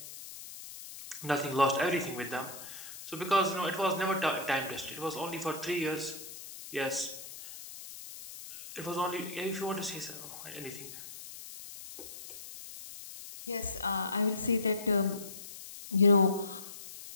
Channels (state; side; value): noise; left; hiss, 13 dB below the sound